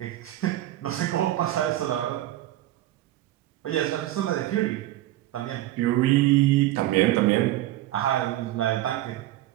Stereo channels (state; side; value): quieter; left; 14.8 dB